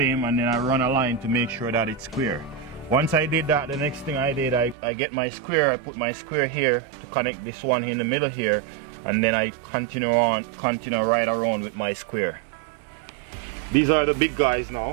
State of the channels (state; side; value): drops out; left; at 4.8 s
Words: and then I run a line to make sure that it's square. Once I did that, the next thing I did, I get my square, I put my square here to connect this one in the middle here, and then I continue right around with my square. These are the big guys